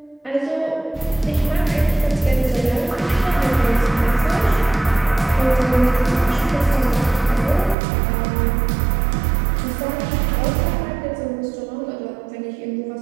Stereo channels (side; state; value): left; drops out; at 7.8 s